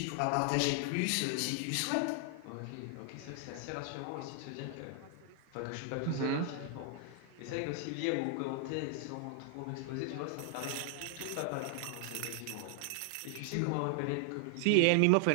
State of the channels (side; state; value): both; different; correlation 0.00